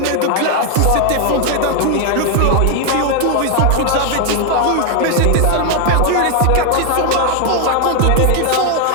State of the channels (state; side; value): different; both; correlation 0.00